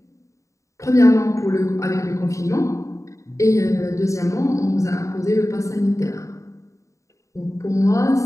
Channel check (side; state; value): right; late; 0.15 ms